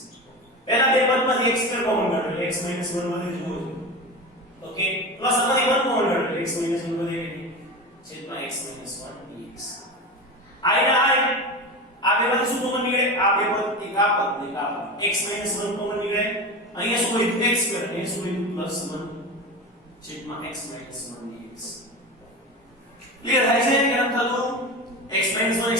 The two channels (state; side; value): normal; both; correlation 0.26